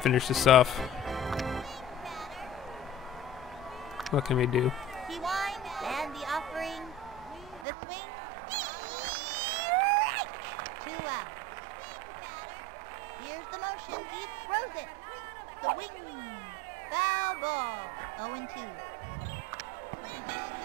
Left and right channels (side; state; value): left; drops out; at 7.7 s